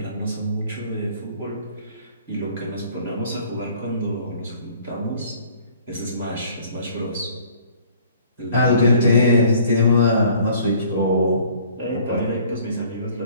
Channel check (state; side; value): inverted; both; correlation -0.55